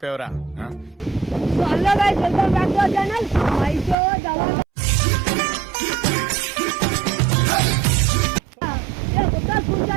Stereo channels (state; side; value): drops out; left; at 4.0 s